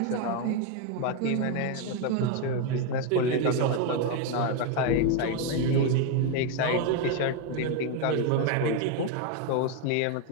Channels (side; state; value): both; different; correlation 0.01